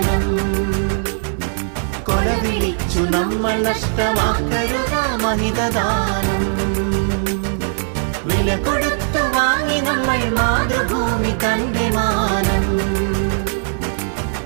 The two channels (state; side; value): silent; left; digital silence